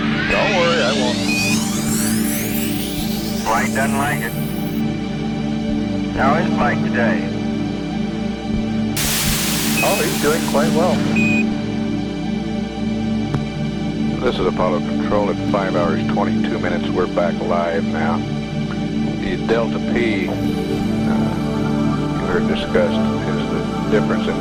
worry, I won't. Flight doesn't like it. How is flight today? Oh, he's doing quite well. This is Apollo Control at 5 hours 22 minutes. We're back live now. The Delta P you heard discussed is the difference in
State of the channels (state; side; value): identical; both; correlation 1.00